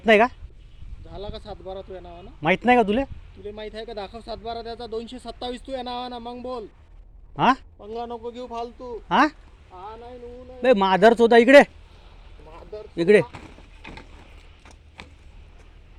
नाही का? झाला का 7/12 तुझ्या नावानं? माहित नाही का तुले? तुला माहित आहे का? दाखव 7/12 त्याचा 227 तुझ्या नावानं. मग बोल. हां पंगा नको घेऊ फालतू. हां हा नाही नऊ नाही. बे माधरच होता इकडे मादर इकडे.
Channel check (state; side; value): identical; both; correlation 1.00